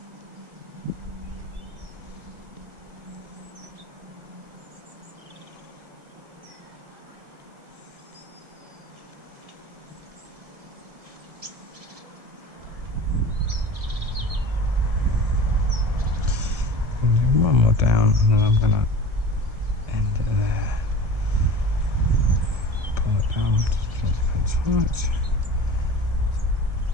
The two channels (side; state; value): left; late; 1.7 ms